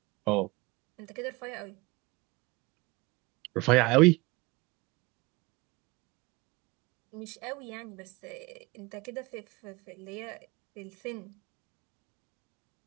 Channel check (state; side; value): quieter; left; 23.4 dB